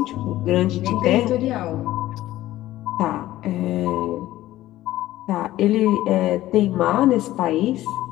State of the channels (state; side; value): quieter; right; 15.2 dB